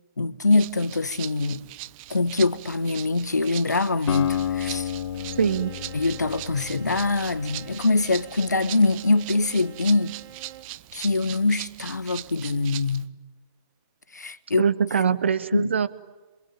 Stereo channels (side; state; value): both; inverted; correlation -0.77